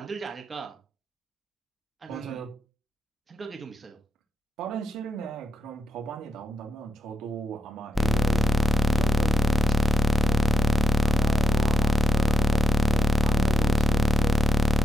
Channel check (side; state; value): both; normal; correlation 0.82